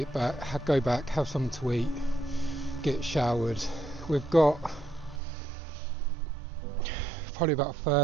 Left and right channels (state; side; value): drops out; left; at 5.2 s